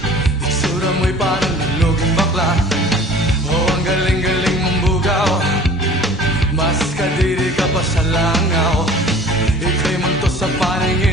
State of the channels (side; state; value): both; normal; correlation 0.46